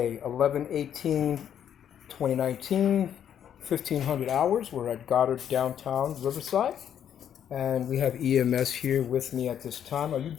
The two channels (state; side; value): quieter; right; 9.4 dB